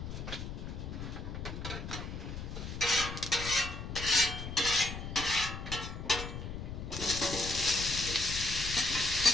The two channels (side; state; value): left; noise; rumble, 7 dB below the sound